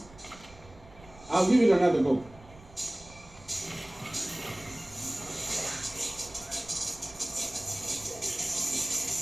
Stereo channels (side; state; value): right; noise; rumble, 21 dB below the sound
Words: I'll give it another go.